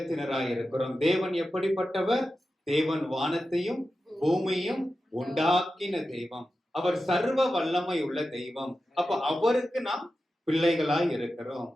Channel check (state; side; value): normal; both; correlation 0.92